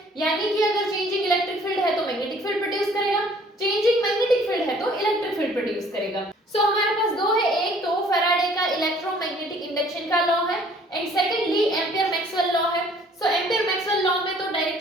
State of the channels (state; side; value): normal; both; correlation 0.56